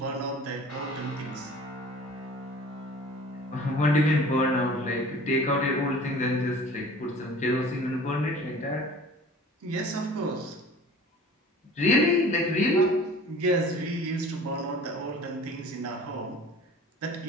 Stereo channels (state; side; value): normal; both; correlation 0.45